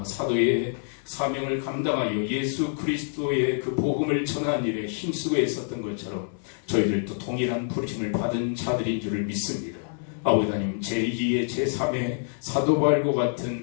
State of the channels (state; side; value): silent; right; 60 dB below the other